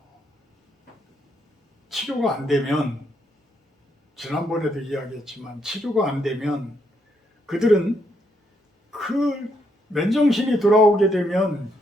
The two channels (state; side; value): normal; both; correlation 0.76